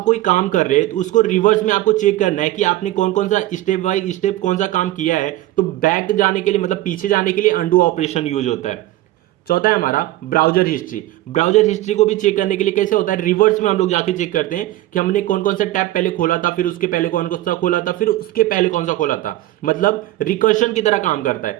कोई काम कर रहे हैं तो उसको रिवर्स में आपको चेक करना है कि आपने कौन कौन सा स्टेप बाय स्टेप कौन सा काम किया है, तो बैक जाने के लिए मतलब पीछे जाने के लिए अंडू ऑपरेशन यूज होता है। चौथा है हमारा ब्राउजर हिस्ट्री। ब्राउजर हिस्ट्री को भी चेक करने के लिए कैसे होता है, रिवर्स में हम लोग जाके चेक करते हैं कि हमने कौन कौन सा टैब पहले खोला था, फिर उसके पहले कौन कौन सा खोला था, फिर उसके पहले कौन सा खोला था। मतलब रिकर्शन की तरह काम करता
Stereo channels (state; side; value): quieter; left; 15.9 dB